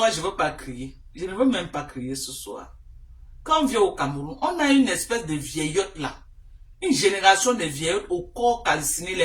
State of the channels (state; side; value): identical; both; correlation 1.00